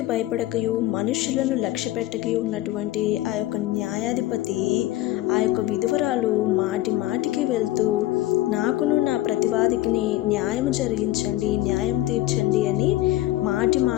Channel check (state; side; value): quieter; right; 15.9 dB